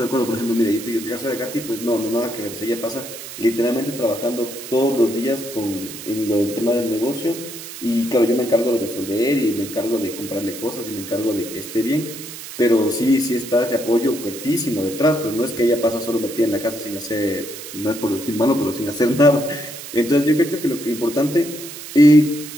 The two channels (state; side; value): noise; right; hiss, 12 dB below the sound